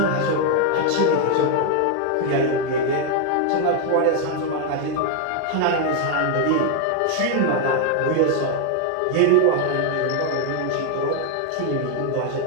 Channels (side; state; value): both; different; correlation 0.01